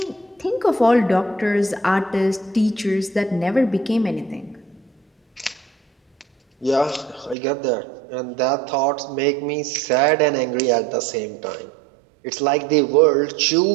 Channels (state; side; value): drops out; left; at 7.4 s